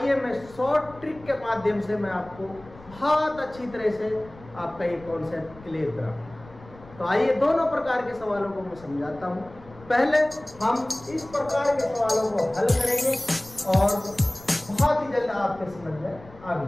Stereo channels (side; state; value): left; noise; rumble, 21 dB below the sound